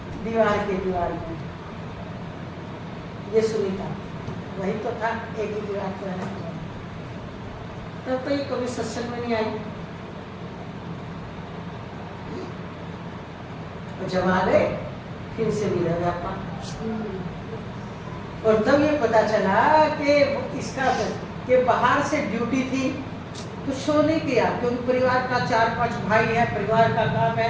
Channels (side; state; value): both; identical; correlation 1.00